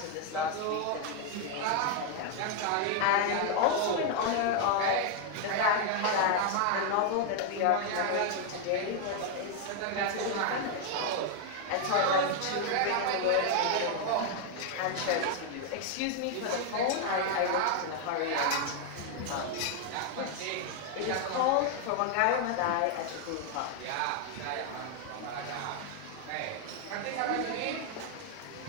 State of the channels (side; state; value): both; different; correlation 0.00